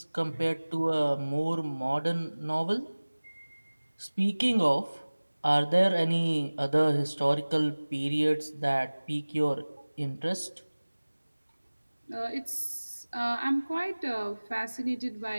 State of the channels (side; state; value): both; inverted; correlation -1.00